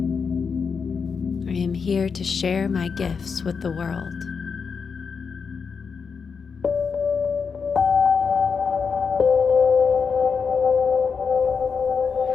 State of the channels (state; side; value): quieter; right; 5.7 dB